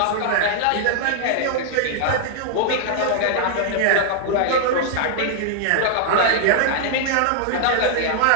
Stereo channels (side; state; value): both; different; correlation -0.01